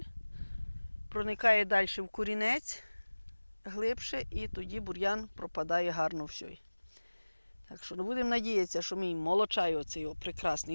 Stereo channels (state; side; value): inverted; both; correlation -1.00